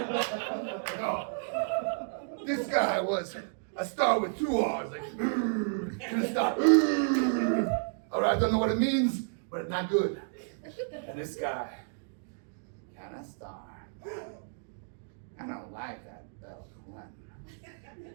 No. This guy was a star with two R's. Like, Kenneth Starr. All right, I don't know what it means, but it's not good. And this guy, Kenneth Starr. I don't like that Bill Clinton.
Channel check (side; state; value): left; silent; digital silence